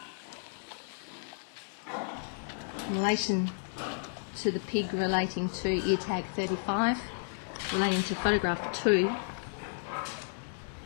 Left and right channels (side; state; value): right; silent; digital silence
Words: In relation to the pig relating to ear tag 35, relating to photograph 2,